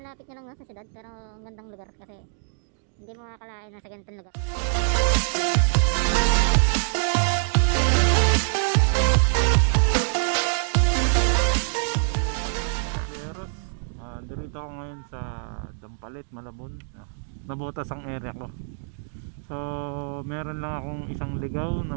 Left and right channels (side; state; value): left; silent; digital silence